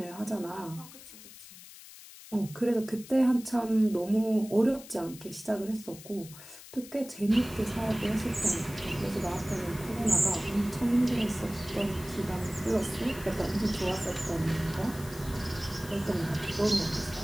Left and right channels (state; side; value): noise; left; hiss, 17 dB below the sound